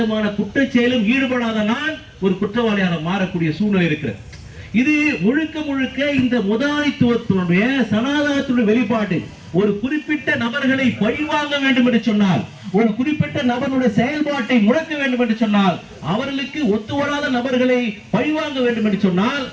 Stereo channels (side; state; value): both; identical; correlation 1.00